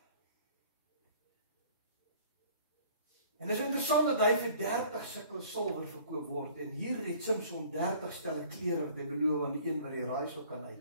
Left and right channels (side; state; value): both; inverted; correlation -0.52